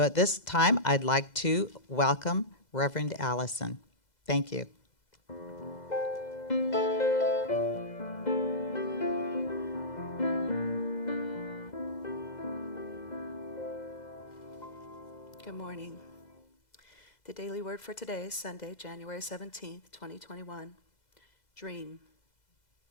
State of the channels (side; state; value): right; late; 2.0 ms